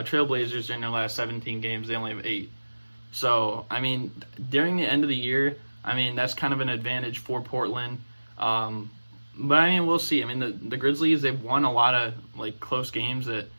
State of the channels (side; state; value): both; inverted; correlation -1.00